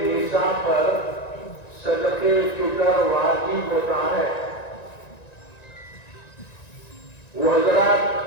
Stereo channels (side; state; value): right; late; 1.9 ms